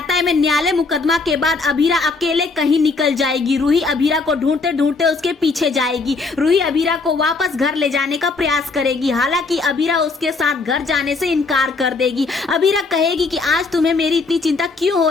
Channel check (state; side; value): quieter; right; 4.0 dB